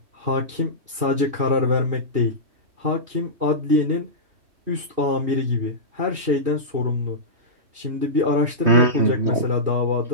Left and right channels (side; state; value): left; late; 2.6 ms